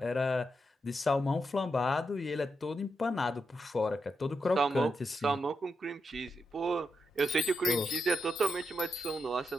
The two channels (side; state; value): both; normal; correlation 0.84